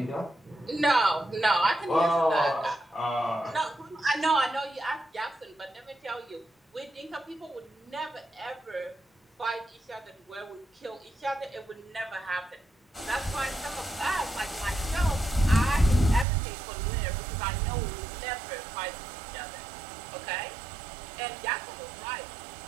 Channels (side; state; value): left; drops out; at 16.2 s